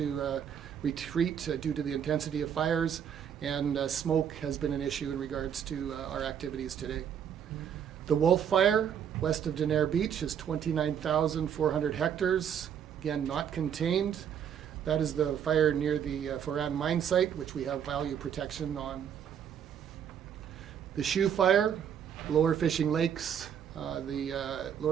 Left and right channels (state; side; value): quieter; left; 8.5 dB